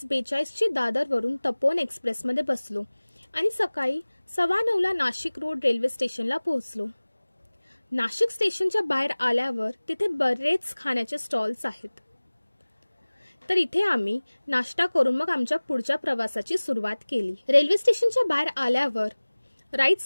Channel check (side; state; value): both; inverted; correlation -1.00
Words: ची दादरवरून तपोवन एक्सप्रेसमध्ये बसलो आणि सकाळी 9:15 नाशिक रोड रेल्वे स्टेशनला पोहोचलो। नाशिक स्टेशनच्या बाहेर आल्यावर तिथे बरेच खाण्याचे स्टॉल्स आहेत। तर इथे आम्ही नाश्ता करून मग आमच्या पुढच्या प्रवासाची सुरुवात केली। रेल्वे स्टेशनच्या बाहेर आल्यावर राईट